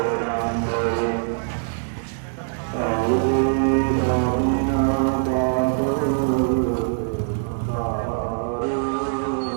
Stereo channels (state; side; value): silent; left; digital silence